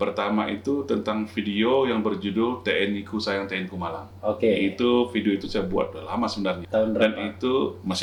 itu tentang video yang berjudul TNI Ku Sayang TNI Ku Malang. Oke. Itu video itu saya buat udah lama sebenarnya. Tahun berapa? Dan itu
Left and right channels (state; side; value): identical; both; correlation 1.00